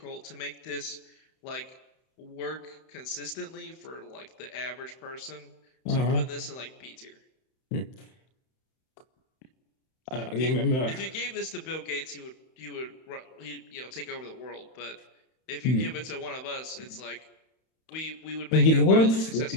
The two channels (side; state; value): right; late; 31 ms